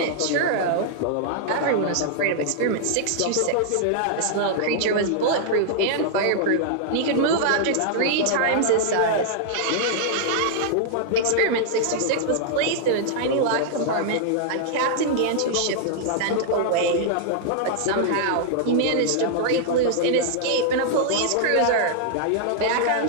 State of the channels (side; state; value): both; different; correlation -0.01